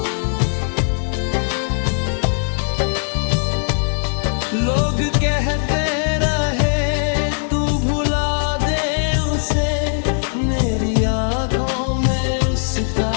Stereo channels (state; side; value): silent; right; digital silence